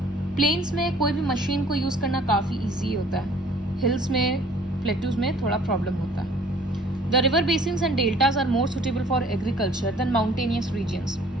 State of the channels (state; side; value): normal; both; correlation 0.54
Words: Plains में कोई भी मशीन को यूज़ करना काफ़ी easy होता है. Hills में, plateaus में थोड़ा problem होता है. The river basins and deltas are more suitable for agriculture than mountainous regions.